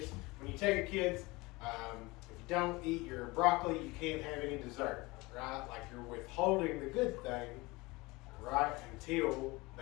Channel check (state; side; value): quieter; right; 22.9 dB